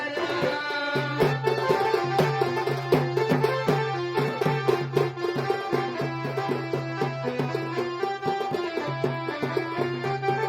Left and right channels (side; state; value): both; identical; correlation 1.00